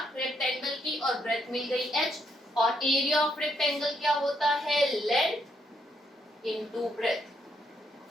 रेक्टेंगल की, और ब्रेथ मिल गई h, और एरिया ऑफ रेक्टेंगल क्या होता है? Length into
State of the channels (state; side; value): normal; both; correlation 0.75